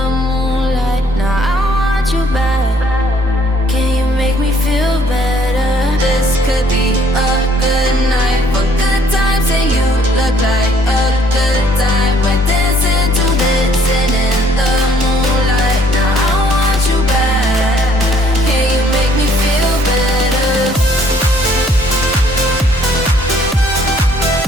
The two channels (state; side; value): normal; both; correlation 0.62